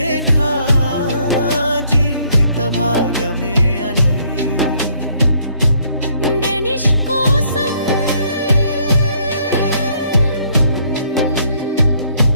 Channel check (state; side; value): inverted; both; correlation -0.66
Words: నా జీవిత భాగమే అని. డెనిష్ కోసం